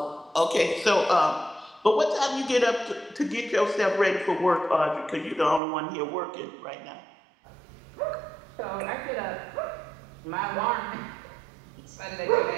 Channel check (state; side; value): drops out; left; at 5.6 s